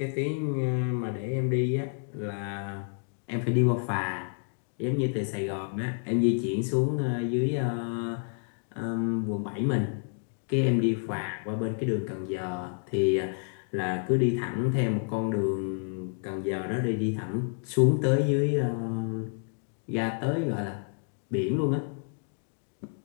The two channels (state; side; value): silent; right; 58 dB below the other